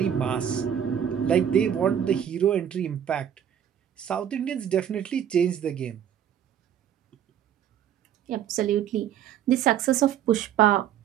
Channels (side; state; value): left; quieter; 9.5 dB